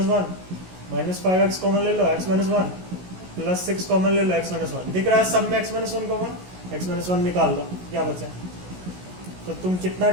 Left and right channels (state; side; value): late; left; 16 ms